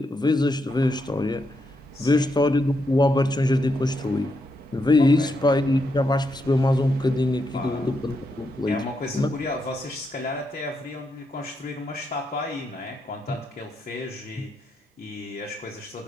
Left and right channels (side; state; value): both; normal; correlation 0.81